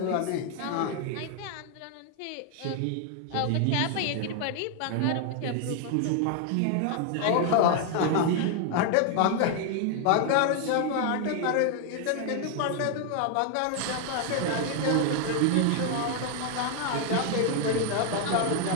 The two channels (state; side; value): different; both; correlation 0.00